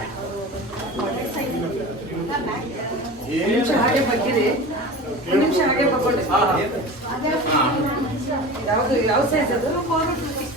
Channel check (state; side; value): normal; both; correlation 0.33